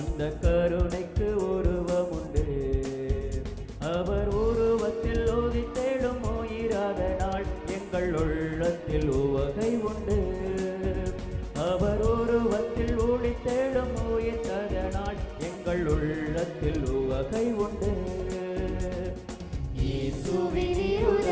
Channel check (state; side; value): identical; both; correlation 1.00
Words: கருணைக்கு உருவம் உண்டு. அவர் உருவத்தில் உதித்தெழும் உயிராத நாள் எங்கள் உள்ளத்தில் உவகை உண்டு. அவர் உருவத்தில் ஒளித்தெழும் உயிர்த்ததனால் எங்கள் உள்ளத்தில் உவகை உண்டு. இயேசுவின்